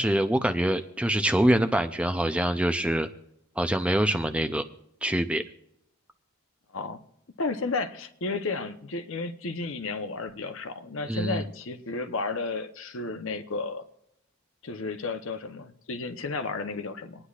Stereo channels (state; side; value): normal; both; correlation 0.64